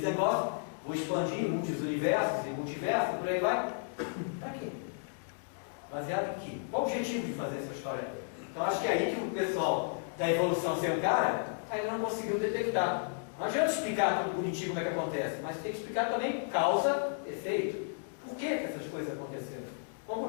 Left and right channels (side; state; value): right; silent; digital silence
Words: negócio, vou expandir em muitos universos e multiversos, por aí vai. Para quê? Baseado em quê? Qual o objetivo de fazer essa história? Então acho que é aí que o pessoal da evolução sem cara ainda não conseguiu detectar. Não adianta explicar tudo bonitinho como é que acontece, mas tem que explicar também causa, efeito. Por que essas coisas aconteceram? Qual o